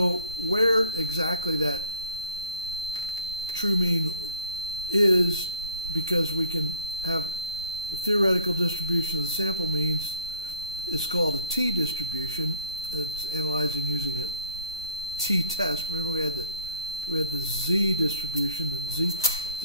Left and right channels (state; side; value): inverted; both; correlation -0.56